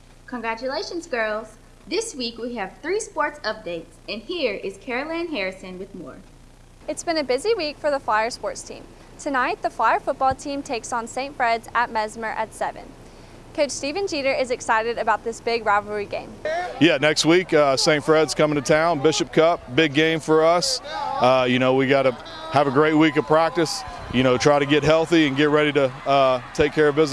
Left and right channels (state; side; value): identical; both; correlation 1.00